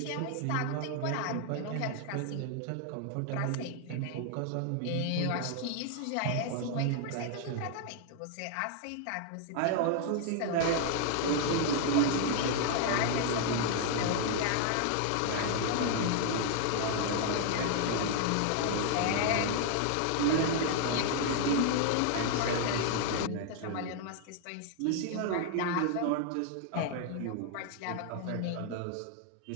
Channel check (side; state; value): both; different; correlation 0.00